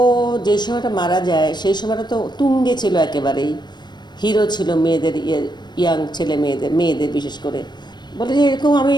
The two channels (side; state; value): right; late; 0.21 ms